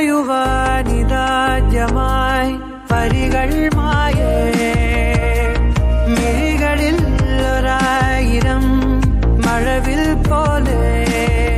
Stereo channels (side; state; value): both; identical; correlation 1.00